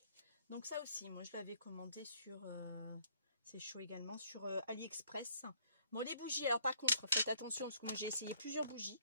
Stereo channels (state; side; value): inverted; both; correlation -0.64